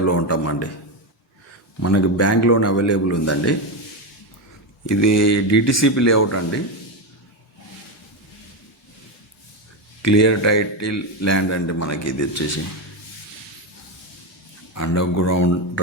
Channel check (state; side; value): normal; both; correlation 0.12